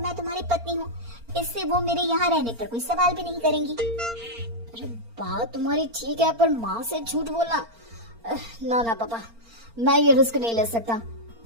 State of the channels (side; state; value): left; late; 4.4 ms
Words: तुम्हारी पत्नी हूँ, इससे वो मेरे यहाँ रहने पर कोई सवाल भी नहीं करेंगी। अरे बात तुम्हारी ठीक है, पर माँ से झूठ बोलना, ना ना पापा, मैं ये रिस्क नहीं ले सकता।